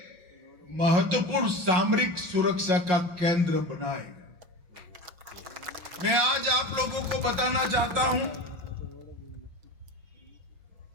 महत्वपूर्ण सामरिक सुरक्षा का केंद्र बनाएगा। मैं आज आप लोगों को बताना चाहता हूं,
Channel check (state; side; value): late; left; 5.6 ms